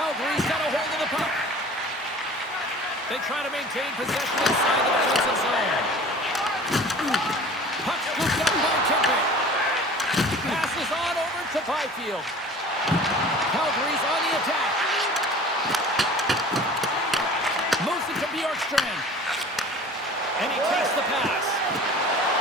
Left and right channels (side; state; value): both; normal; correlation 0.43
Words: got a hold of the puck. They try to maintain possession inside the defensive zone. Puck scooped up by Kempe. Passes on over to Byfield. Calgary's on the attack. Moves it to Bjorkstrand. And he takes the pass.